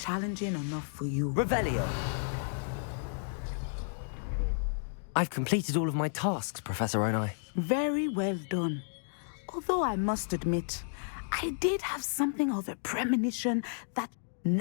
enough for you. Revelio! I've completed all of my tasks, Professor Onai. Very well done. Although I must admit, I did have something of a premonition that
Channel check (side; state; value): right; silent; digital silence